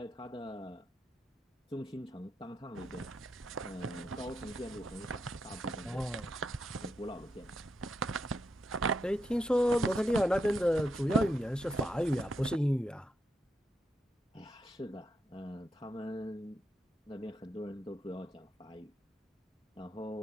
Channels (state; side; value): normal; both; correlation 0.82